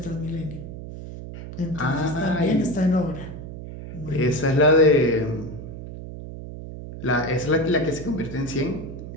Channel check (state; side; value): noise; right; hum, 11 dB below the sound